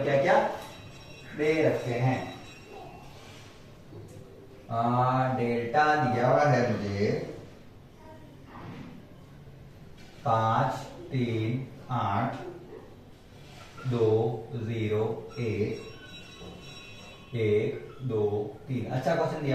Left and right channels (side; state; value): both; identical; correlation 1.00